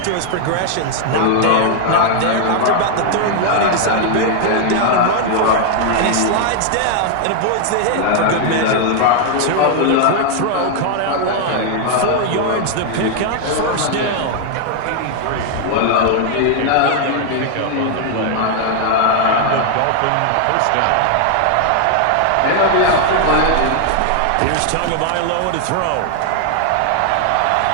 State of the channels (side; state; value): both; different; correlation 0.00